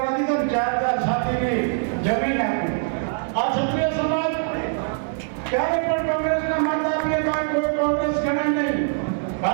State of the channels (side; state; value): left; silent; digital silence